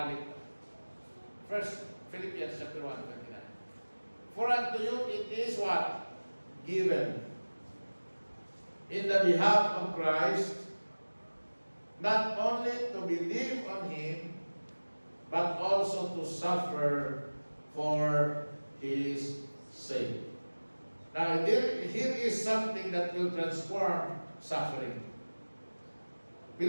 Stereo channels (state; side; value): inverted; both; correlation -1.00